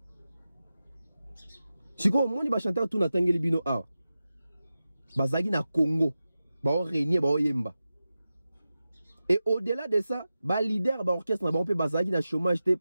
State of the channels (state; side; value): inverted; both; correlation -0.93